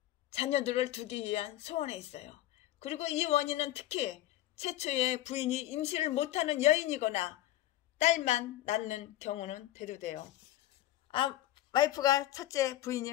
자녀들을 두기 위한 소원에 있어요. 그리고 이 원인은 특히 최초의 부인이 임신을 못하는 여인이거나 딸만 낳는 경우는 대두돼요. 와이프가 첫째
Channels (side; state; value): right; quieter; 14.2 dB